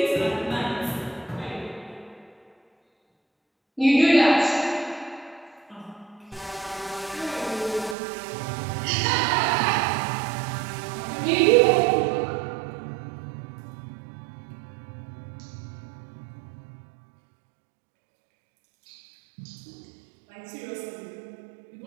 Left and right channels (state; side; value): drops out; left; at 8.0 s